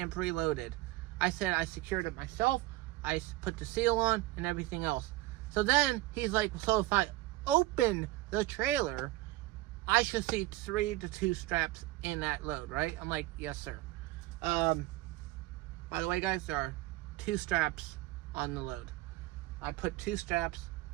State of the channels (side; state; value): left; quieter; 17.7 dB